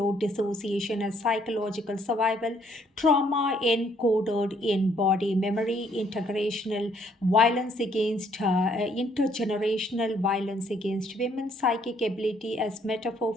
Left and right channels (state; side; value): normal; both; correlation 0.66